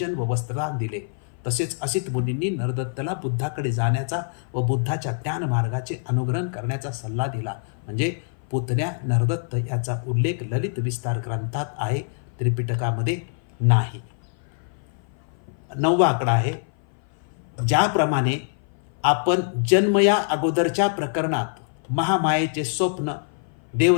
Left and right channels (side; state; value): right; silent; 56 dB below the other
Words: व वस्त्रदान दिले. तसेच असित मुनींनी नरदत्ताला बुद्धाकडे जाण्याचा व बुद्धाच्या ज्ञान मार्गाचे अनुग्रहण करण्याचा सल्ला दिला. म्हणजे पुतण्या नरदत्त याचा उल्लेख ललित विस्तार ग्रंथात आहे, त्रिपिटकामध्ये नाही. 9वा आकडा आहे. ज्याप्रमाणे आपण जन्म या अगोदरच्या प्रकरणात महामायेचे स्वप्न,